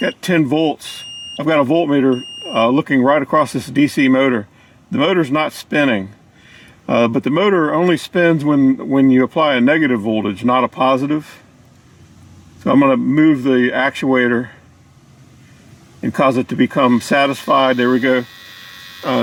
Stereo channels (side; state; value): both; identical; correlation 1.00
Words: 10 volts. I've got a voltmeter looking right across this DC motor. The motor's not spinning, but the motor only spins when you apply a negative voltage, not a positive. So I'm going to move the actuator and cause it to become satisfied. There we go.